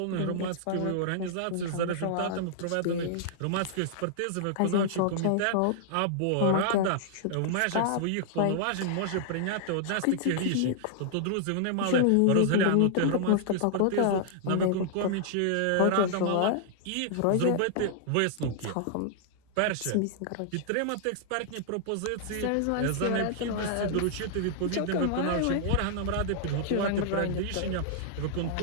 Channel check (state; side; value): different; both; correlation -0.01